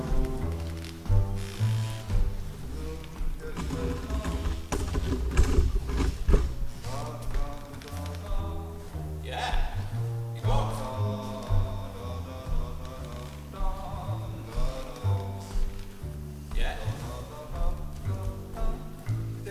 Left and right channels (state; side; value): identical; both; correlation 1.00